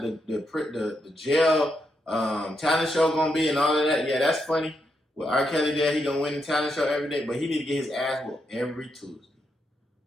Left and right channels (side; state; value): both; normal; correlation 0.82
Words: the jail talent show gonna be and all of that. Yeah, that's funny. With R. Kelly there, he gonna win the talent show every day, but he need to get his ass whooped every Tuesday.